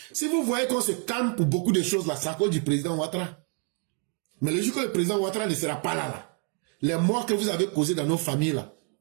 Si vous voyez qu'on se calme pour beaucoup de choses là, c'est à cause du président Ouattara. Mais le jour que le président Ouattara ne sera pas là, les morts que vous avez causés dans nos familles là,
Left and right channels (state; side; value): quieter; left; 39.0 dB